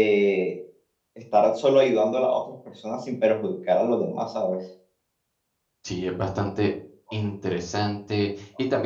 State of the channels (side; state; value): both; identical; correlation 1.00